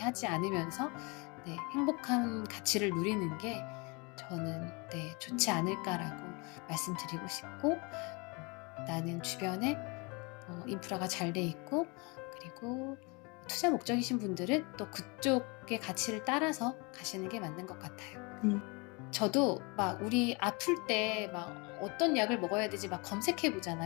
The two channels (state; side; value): quieter; right; 29.3 dB